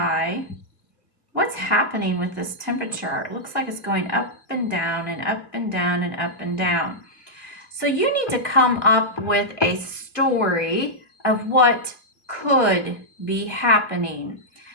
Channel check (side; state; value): right; late; 1.8 ms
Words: what's happening with this temperature? It looks like it's going up and down and up and down and up and down. So you need to come up with a story of what could be happening.